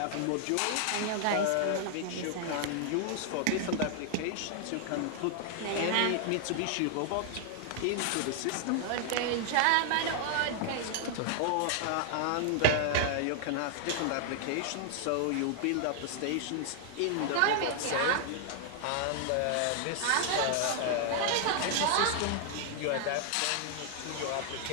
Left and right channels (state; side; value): different; both; correlation 0.00